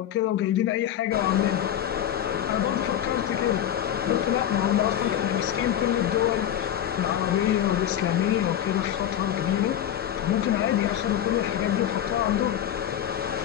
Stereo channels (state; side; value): quieter; right; 10.6 dB